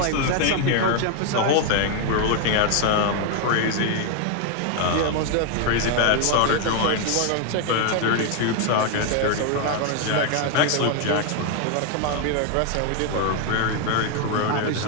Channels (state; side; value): different; both; correlation 0.00